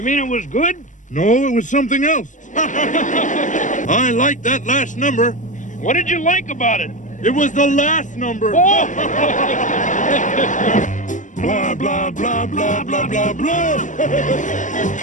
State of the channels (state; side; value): late; right; 0.37 ms